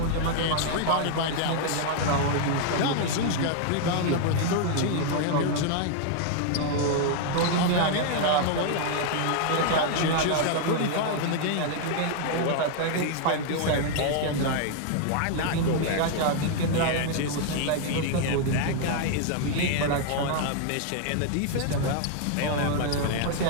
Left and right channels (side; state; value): both; different; correlation 0.00